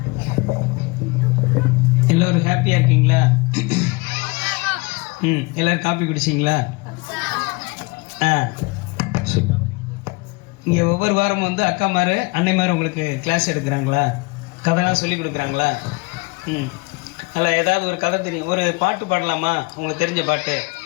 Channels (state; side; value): quieter; right; 27.0 dB